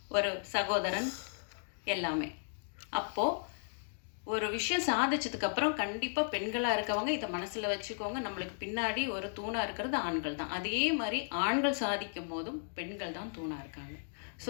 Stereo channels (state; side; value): silent; right; digital silence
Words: ஒரு சகோதரன் எல்லாமே. அப்போது ஒரு விஷயம் சாதிச்சதுக்கப்புறம் கண்டிப்பாக பெண்களாக இருக்கவங்க இதை மனசில் வச்சுக்கோங்க, நம்மளுக்கு பின்னாடி ஒரு தூணாக இருக்கிறது ஆண்கள் தான். அதே மாதிரி ஆண்கள் சாதிக்கும் போதும் பெண்கள் தான் தூணாக இருக்காங்க. So